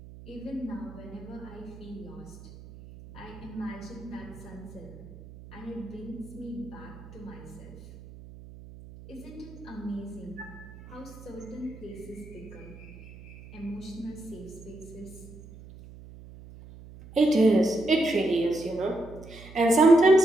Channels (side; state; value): right; noise; hum, 17 dB below the sound